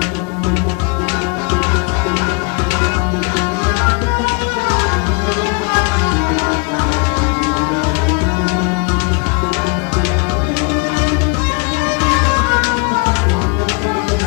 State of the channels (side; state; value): right; quieter; 32.6 dB